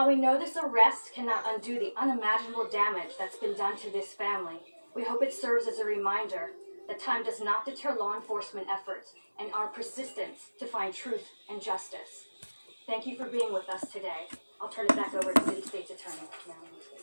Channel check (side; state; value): both; inverted; correlation -1.00